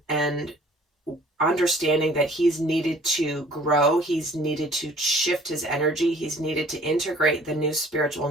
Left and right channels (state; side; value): normal; both; correlation 0.54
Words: and understanding that he's needed to grow, he's needed to shift his energy, he's needed to integrate the new spiritual